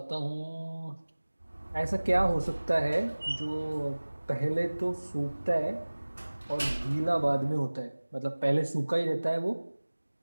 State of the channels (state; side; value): inverted; both; correlation -1.00